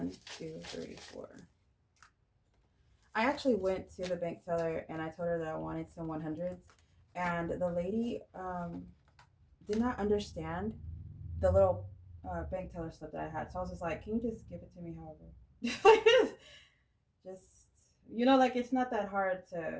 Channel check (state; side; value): identical; both; correlation 1.00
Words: 2, 3, 4. I actually went to the bank teller and I told her that I wanted some 100s, and the lady did not understand the little bank teller slip that I had. So I was just like, "Can you just give it to me, however?" just like it's not that hard